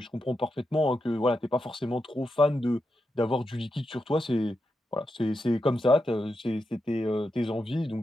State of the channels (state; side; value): normal; both; correlation 0.86